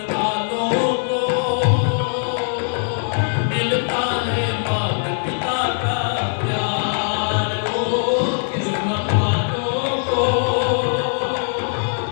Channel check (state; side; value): silent; right; 65 dB below the other